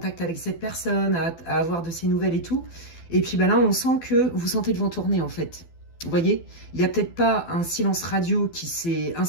avec cette personne, à avoir de ses nouvelles et tout. Et puis là, on sent que vous sentez le vent tourner, en fait. Vous voyez, il n'y a peut-être pas un silence radio qui s'est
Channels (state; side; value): late; right; 12 ms